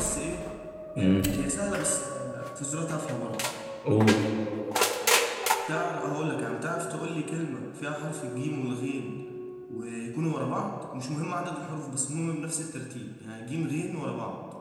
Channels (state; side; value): identical; both; correlation 1.00